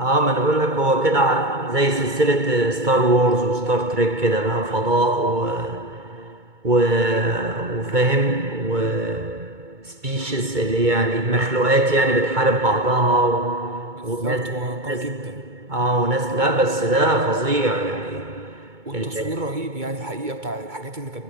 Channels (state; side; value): late; left; 2.2 ms